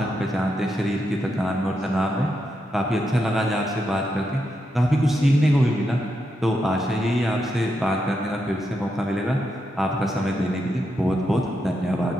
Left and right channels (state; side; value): normal; both; correlation 0.83